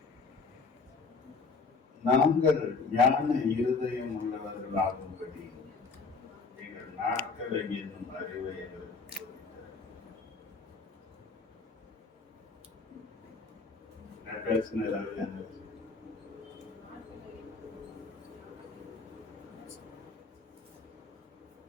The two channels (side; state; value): right; quieter; 4.5 dB